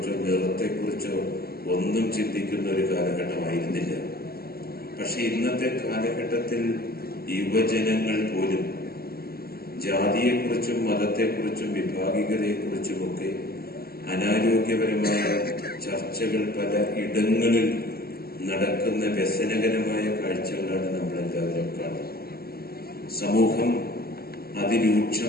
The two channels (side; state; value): right; late; 0.45 ms